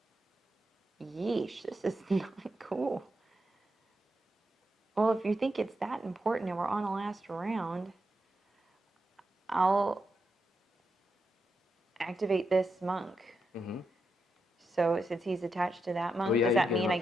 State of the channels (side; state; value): both; normal; correlation 0.85